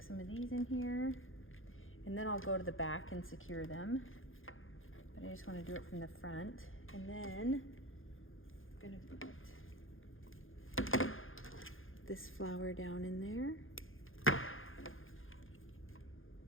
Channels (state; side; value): late; right; 0.59 ms